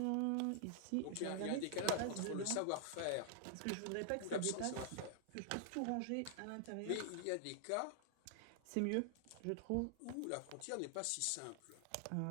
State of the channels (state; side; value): different; both; correlation -0.01